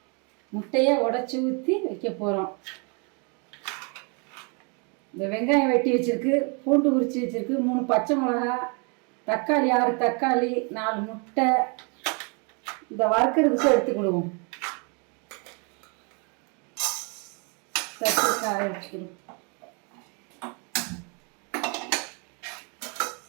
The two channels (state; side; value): quieter; left; 34.9 dB